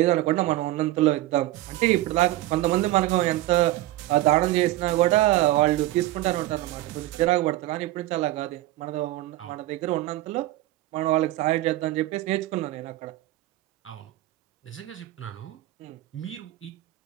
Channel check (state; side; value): quieter; left; 16.3 dB